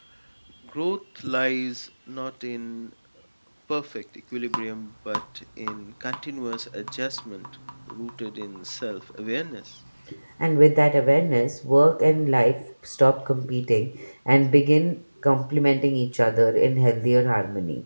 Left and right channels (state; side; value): inverted; both; correlation -1.00